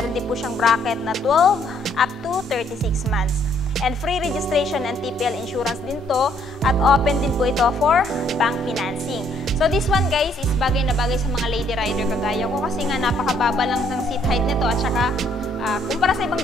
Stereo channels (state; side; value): normal; both; correlation 0.67